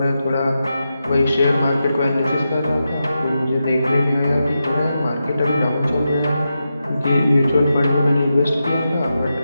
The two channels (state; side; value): inverted; both; correlation -0.89